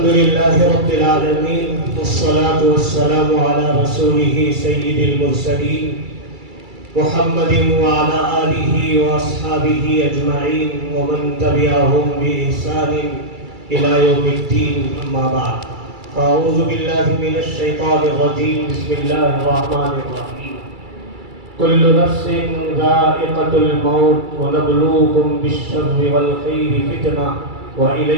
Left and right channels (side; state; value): left; late; 2.3 ms